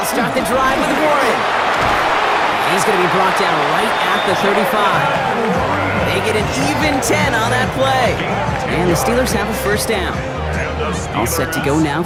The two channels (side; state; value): both; identical; correlation 1.00